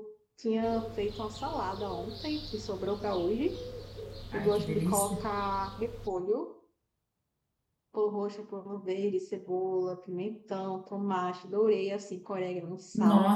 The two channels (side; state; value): both; identical; correlation 1.00